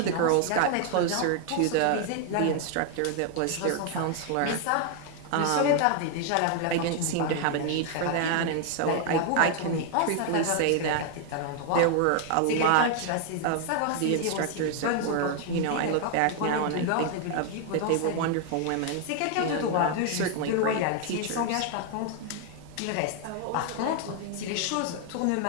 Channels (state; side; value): different; both; correlation 0.00